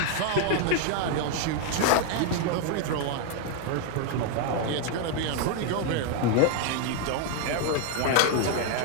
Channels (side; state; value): both; different; correlation 0.01